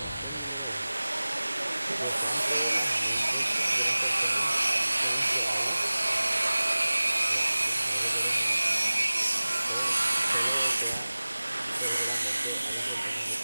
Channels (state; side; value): inverted; both; correlation -0.99